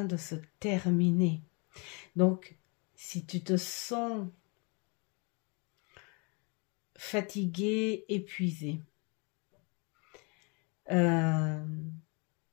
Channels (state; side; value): quieter; right; 32.2 dB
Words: de se terminer. Donc, si tu te sens fatigué, épuisé,